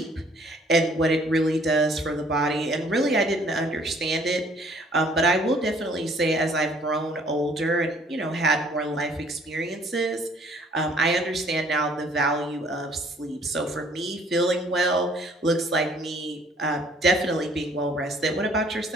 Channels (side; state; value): both; normal; correlation 0.59